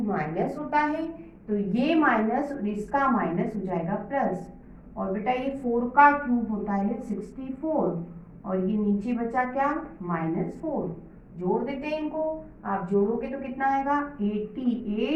माइनस होता है, तो ये माइनस और इसका माइनस हो जाएगा प्लस, और बेटा ये 4 का क्यूब होता है 64, और ये नीचे बचा क्या? -4। जोड़ देते हैं इनको, आप जोड़ोगे तो कितना आएगा?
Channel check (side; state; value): both; identical; correlation 1.00